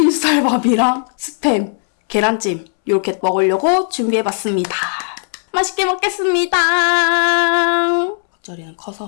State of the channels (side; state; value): right; silent; 69 dB below the other